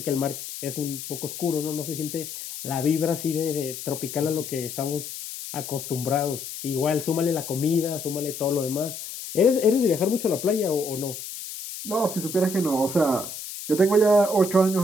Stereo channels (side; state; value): left; noise; hiss, 9 dB below the sound